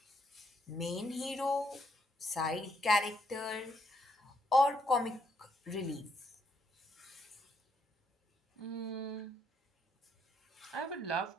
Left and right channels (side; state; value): both; normal; correlation 0.73